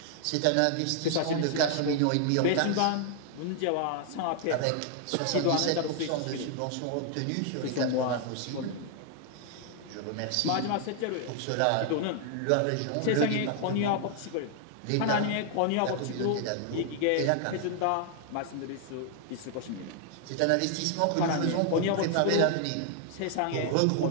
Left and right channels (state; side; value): different; both; correlation 0.00